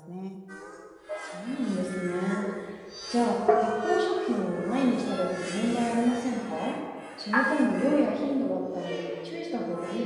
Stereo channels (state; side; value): identical; both; correlation 1.00